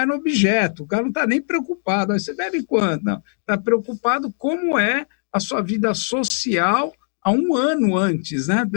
no objeto. O cara não está nem preocupado. Aí você bebe quanto? Não. Está preocupado como é a sua vida social há um ano antes, né?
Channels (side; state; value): right; silent; digital silence